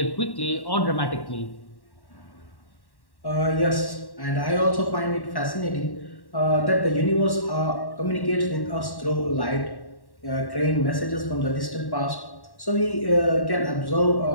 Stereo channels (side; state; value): right; late; 1.1 ms